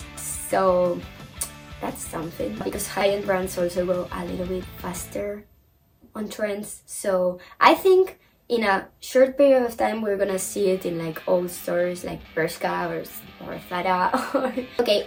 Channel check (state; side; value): identical; both; correlation 1.00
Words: so that's something because high-end brands also go a little bit faster on trends. So I think in a short period of time we're gonna see it in like old stores like Bershka or Zara.